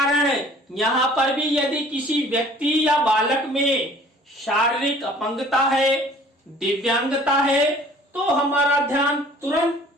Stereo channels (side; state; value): both; normal; correlation 0.51